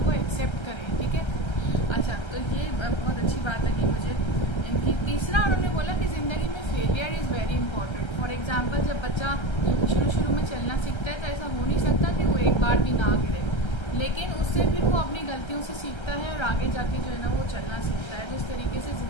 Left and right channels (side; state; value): right; late; 1.3 ms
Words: को एक्सेप्ट करें, ठीक है। अच्छा, तो ये बहुत अच्छी बात लगी मुझे इनकी। तीसरा उन्होंने बोला कि ज़िंदगी में failure is very important. For example जब बच्चा शुरू में चलना सीखता है तो ऐसा हो नहीं सकता कि वो एक बार भी ना गिरे, लेकिन उससे फिर वो अपनी गलतियों से सीखता है और आगे जाके जो है ना वो चलना सीखता है। तो इस तरीके से